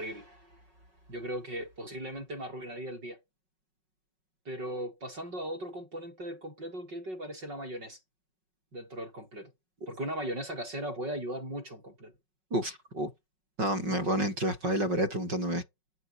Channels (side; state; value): left; late; 5.4 ms